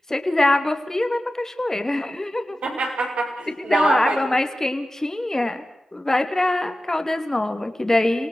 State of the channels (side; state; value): both; normal; correlation 0.94